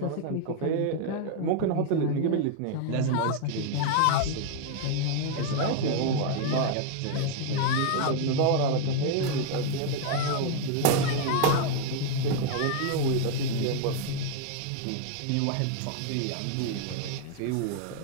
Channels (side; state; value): both; different; correlation 0.00